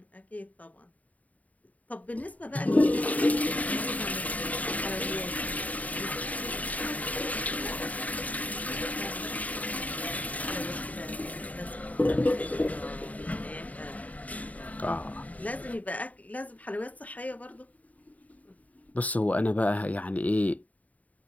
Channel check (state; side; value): late; right; 0.072 ms